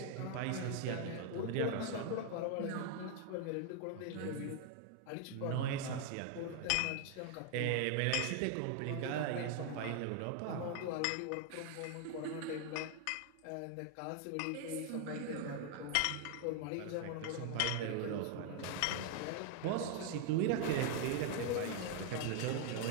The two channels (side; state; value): both; different; correlation 0.00